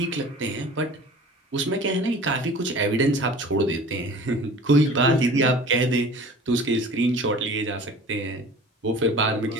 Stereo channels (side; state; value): both; normal; correlation 0.43